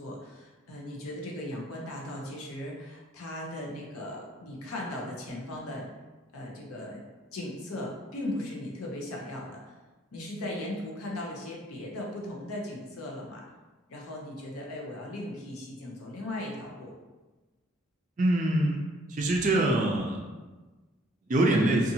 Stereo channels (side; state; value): both; normal; correlation 0.63